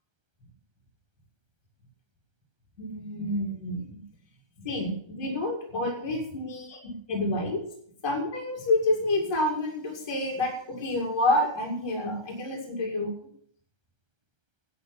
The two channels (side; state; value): left; late; 1.3 ms